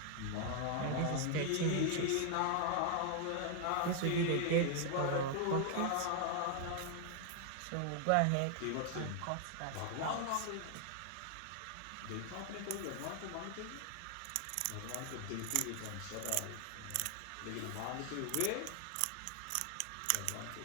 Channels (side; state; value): both; different; correlation 0.00